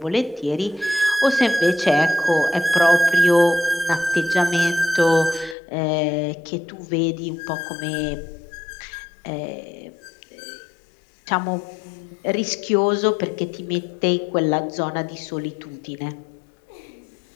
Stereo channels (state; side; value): drops out; right; at 5.6 s